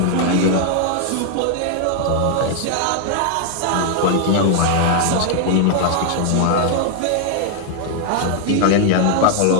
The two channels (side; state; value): both; different; correlation 0.00